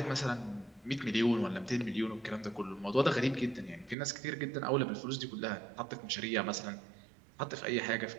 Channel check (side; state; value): left; drops out; at 4.0 s